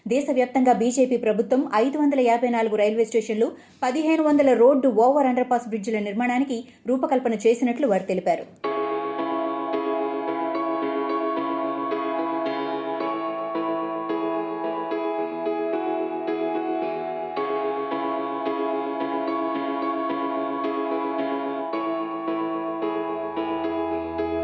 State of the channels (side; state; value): both; identical; correlation 1.00